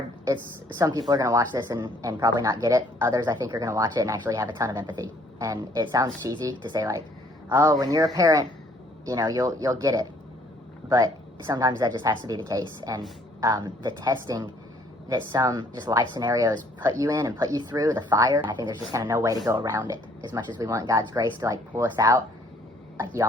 Some people are going to watch this and probably not get it. Others, I think, are going to watch it and actually have a ton of empathy. And it sounds cheesy to say, like, oh, when you're a parent, you know, you'll get it. But sometimes that just has to be the case. And the testing that some just life scenarios put you in and put you through, the fire, I think there's just kind of no way to go around it. As much as we want God's grace to, like, pull us out, like, you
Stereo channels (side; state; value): both; normal; correlation 0.62